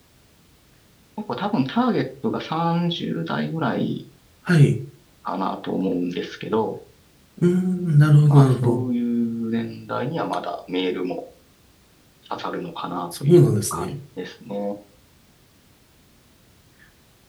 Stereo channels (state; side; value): identical; both; correlation 1.00